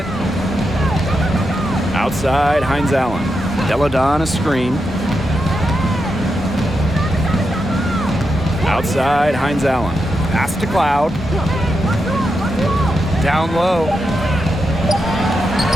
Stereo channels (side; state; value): both; normal; correlation 0.86